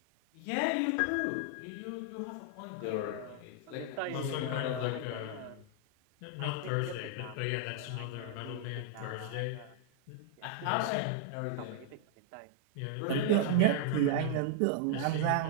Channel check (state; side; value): different; both; correlation -0.01